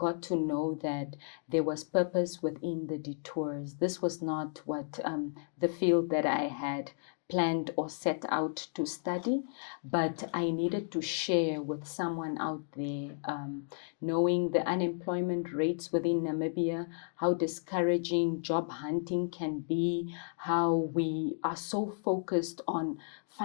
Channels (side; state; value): right; silent; digital silence